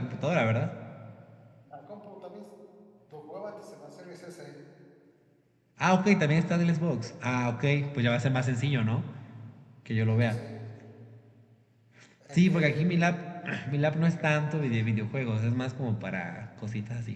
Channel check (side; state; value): both; identical; correlation 1.00